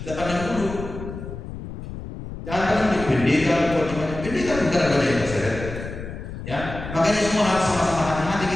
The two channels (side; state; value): left; noise; rumble, 9 dB below the sound